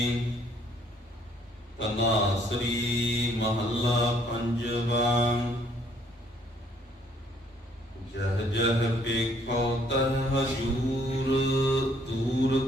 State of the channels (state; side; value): normal; both; correlation 0.64